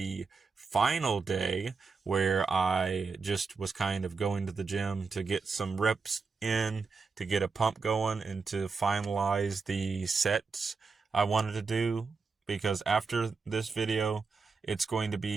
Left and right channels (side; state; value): left; quieter; 4.7 dB